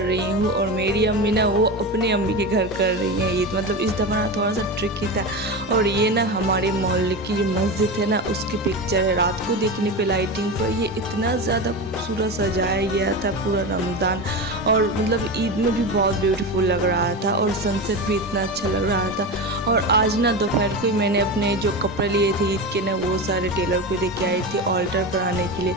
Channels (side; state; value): both; normal; correlation 0.22